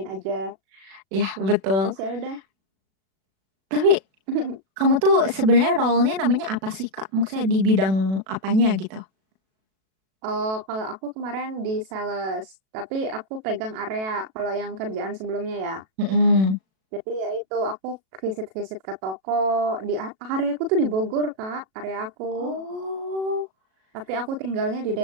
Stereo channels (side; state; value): left; late; 36 ms